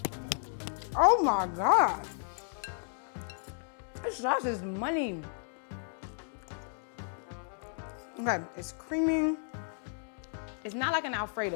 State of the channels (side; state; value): right; silent; digital silence